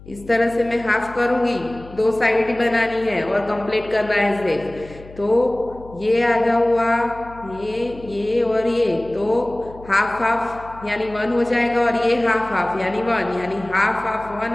इस तरह से मैं हाफ करूंगी, 2 साइड ही बनानी है और कंप्लीट करना है शेप। तो ये आधा हुआ, ये और ये, तो हाफ हाफ यानी 1 हो जाएगा और ये हाफ हाफ यानी 1, यानी हाफ हाफ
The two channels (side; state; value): left; noise; hum, 19 dB below the sound